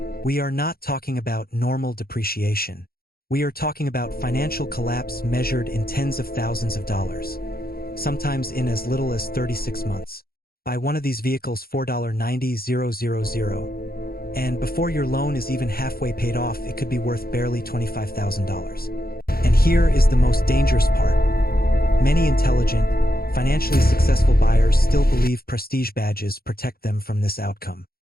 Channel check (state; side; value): late; right; 0.44 ms